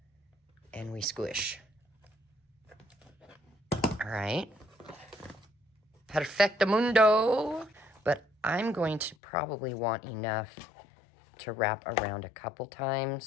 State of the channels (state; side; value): drops out; right; at 9.2 s